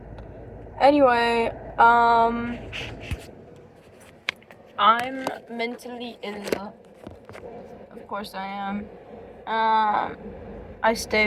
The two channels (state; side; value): identical; both; correlation 1.00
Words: Anyway, I'm mentally ill. Of course I am. I